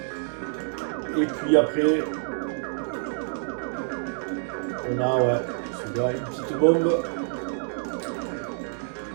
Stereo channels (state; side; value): silent; left; digital silence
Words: Et puis après, on a ouais, une petite bombe.